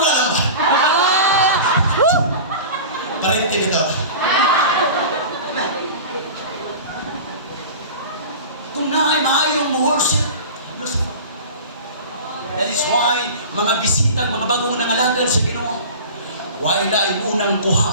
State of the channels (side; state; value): both; inverted; correlation -0.35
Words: lang ba? Parinti nito. Kung naay maayong worship, that is why mga bisitang, mga bagong nangalagad sa Ginoo, wala ay unang